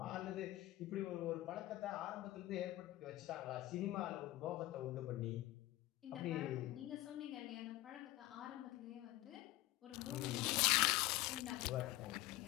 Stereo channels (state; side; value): quieter; right; 17.2 dB